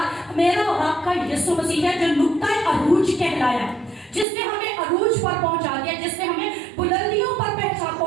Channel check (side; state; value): left; drops out; at 4.2 s